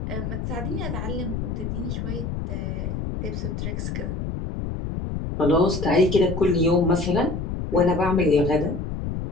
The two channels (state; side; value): noise; left; rumble, 4 dB below the sound